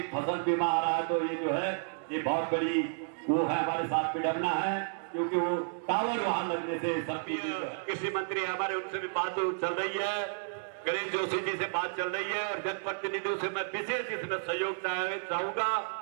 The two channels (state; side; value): silent; left; digital silence